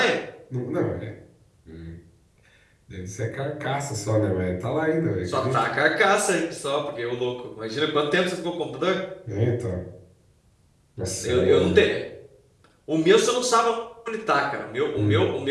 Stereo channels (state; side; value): identical; both; correlation 1.00